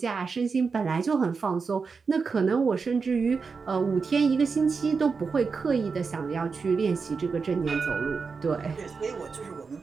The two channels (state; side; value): quieter; left; 5.0 dB